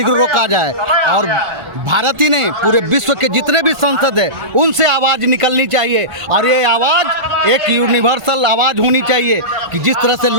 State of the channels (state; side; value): late; left; 1.5 ms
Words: रोका जाए, और भारत ही नहीं पूरे विश्व के जितने भी संसद है उनसे आवाज़ निकलनी चाहिए, और ये आवाज़ एक यूनिवर्सल आवाज़ होनी चाहिए कि जिस तरह से